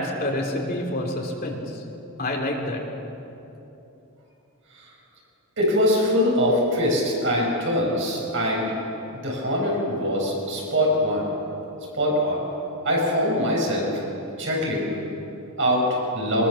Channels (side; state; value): both; normal; correlation -0.06